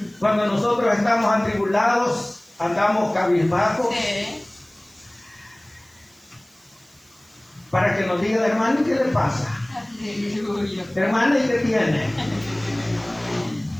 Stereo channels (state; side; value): noise; right; hiss, 30 dB below the sound